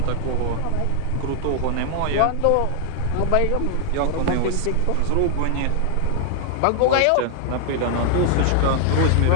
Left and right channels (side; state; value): both; different; correlation 0.00